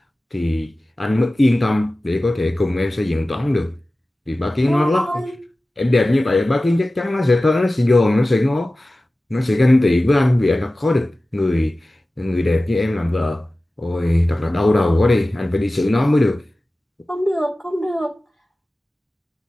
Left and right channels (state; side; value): normal; both; correlation 0.96